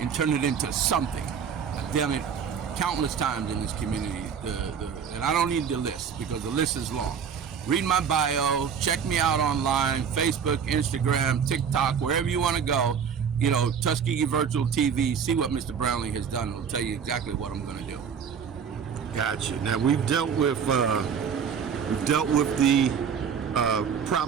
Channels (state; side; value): quieter; left; 7.2 dB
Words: turn it into something. I've done it countless times in this community, and I don't need the list because the list is long. Read my bio, check me out online, Facebook, Instagram, TikTok, wherever you want to go. Tuskegee Virtual TV, see what Mr. Brownlee has done. It'll tell you exactly what I'm going to do. Gotcha. Now we've dealt with the